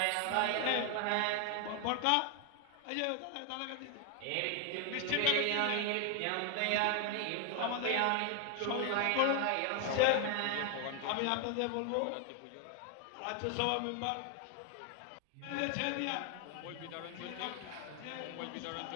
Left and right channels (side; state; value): both; different; correlation 0.00